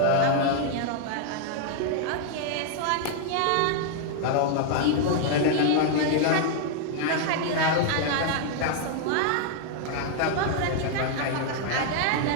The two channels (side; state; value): both; different; correlation 0.00